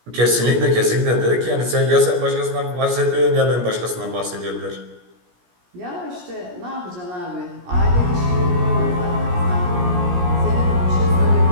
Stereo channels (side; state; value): left; late; 17 ms